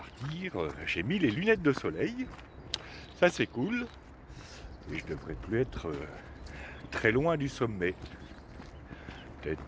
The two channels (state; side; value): identical; both; correlation 1.00